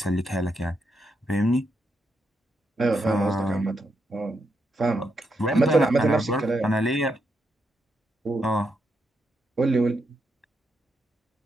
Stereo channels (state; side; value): normal; both; correlation 0.81